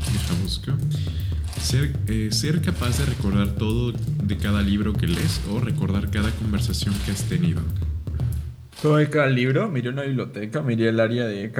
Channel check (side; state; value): both; identical; correlation 1.00